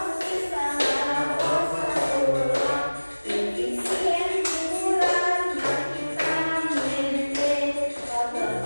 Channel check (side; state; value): both; inverted; correlation -1.00